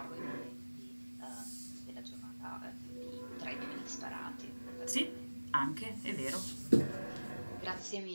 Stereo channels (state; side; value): inverted; both; correlation -1.00